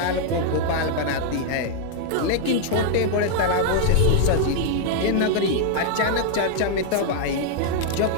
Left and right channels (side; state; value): both; different; correlation -0.01